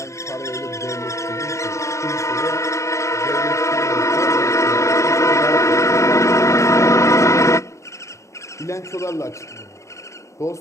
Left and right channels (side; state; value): right; late; 0.14 ms